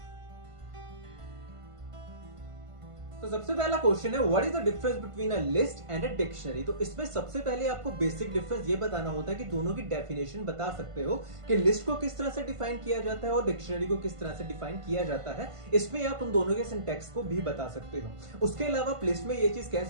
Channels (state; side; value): late; left; 1.5 ms